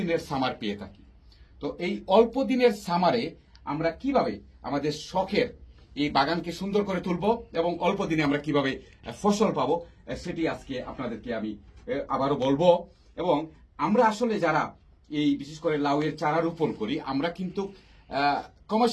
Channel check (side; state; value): both; identical; correlation 1.00